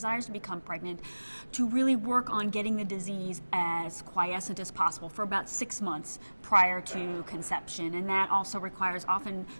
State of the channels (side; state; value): both; inverted; correlation -1.00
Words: to become pregnant to really work on getting the disease as quiescent as possible for about 6 months prior to conception. And that also requires often